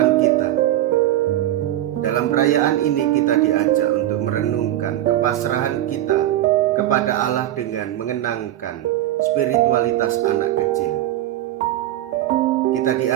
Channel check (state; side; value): quieter; left; 13.5 dB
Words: kita. Dalam perayaan ini kita diajak untuk merenungkan kepasrahan kita kepada Allah dengan mengenangkan spiritualitas anak kecil. Kita